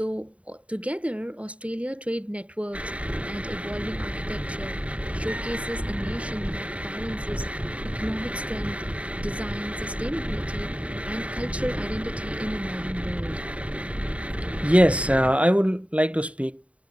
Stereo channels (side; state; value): left; late; 0.065 ms